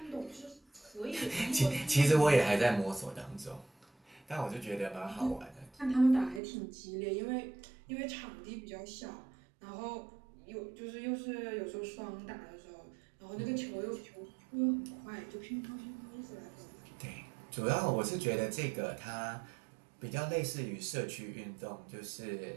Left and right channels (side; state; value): left; drops out; at 6.4 s